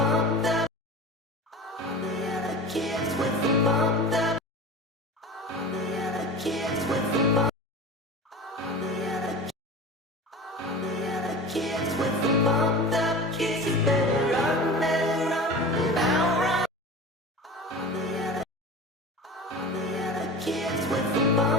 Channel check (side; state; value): both; normal; correlation 0.33